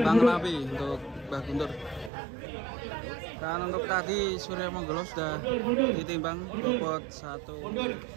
Lapi untuk Mbah Guntur. Dan untuk tadi Surya Manggolo sudah ditimbang bobot 1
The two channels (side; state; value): left; drops out; at 2.1 s